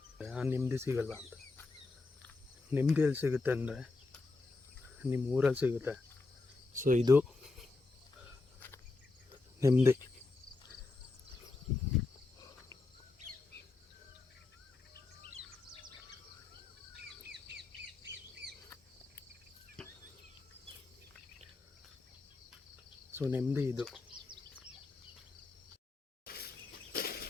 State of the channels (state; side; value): quieter; right; 3.6 dB